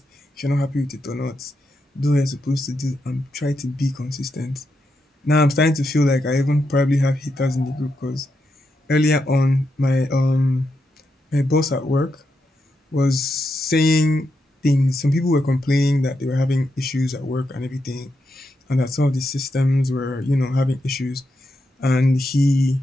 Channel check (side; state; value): both; normal; correlation 0.84